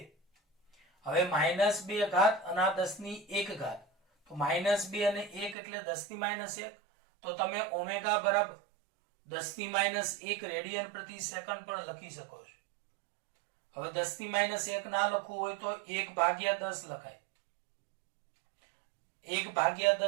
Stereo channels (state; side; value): drops out; left; at 5.6 s